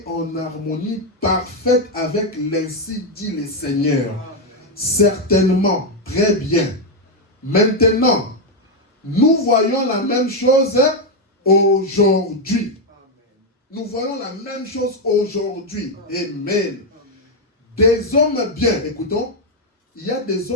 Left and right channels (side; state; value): both; normal; correlation 0.03